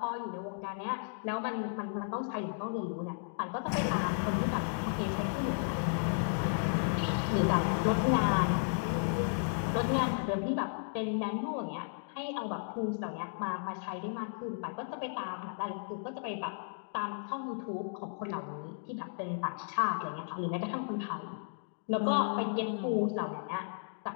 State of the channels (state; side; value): silent; right; digital silence